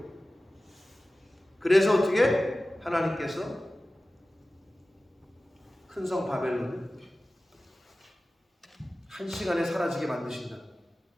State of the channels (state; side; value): normal; both; correlation 0.96